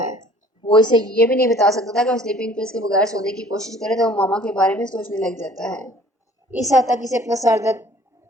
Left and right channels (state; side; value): normal; both; correlation 0.53